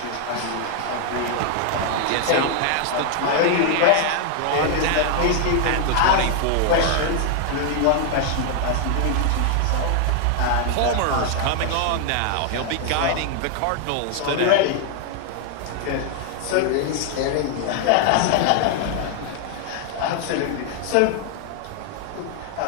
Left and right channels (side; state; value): both; different; correlation 0.00